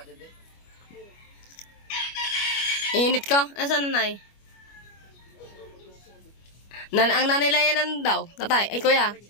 ba dyan, Init ka? Asan nanay? Ang nanay layanan daw. Tatay. Ay, kuya.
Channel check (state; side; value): late; right; 25 ms